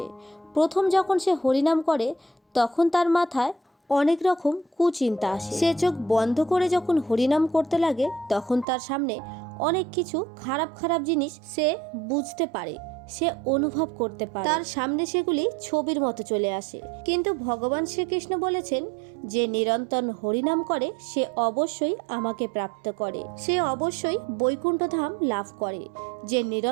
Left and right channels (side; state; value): left; drops out; at 8.7 s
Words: প্রথম যখন সে হরিনাম করে তখন তার মাথায় অনেক রকম কুচিন্তা আসে। সে চোখ বন্ধ করে যখন হরিনাম করতে লাগে তখন তার সামনে অনেক কিছু খারাপ খারাপ জিনিস সে বুঝতে পারে, সে অনুভব করতে পারে, তার সামনে সেগুলি ছবির মতো চলে আসে। কিন্তু ভগবান শ্রীকৃষ্ণ বলেছেন, যে নিরন্তর হরিনাম করে সে অবশ্যই আমাকে প্রাপ্ত করে, সে অবশ্যই বৈকুণ্ঠ ধাম লাভ করে। যে